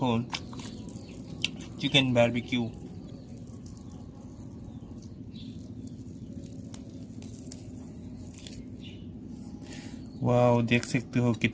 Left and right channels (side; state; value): both; identical; correlation 1.00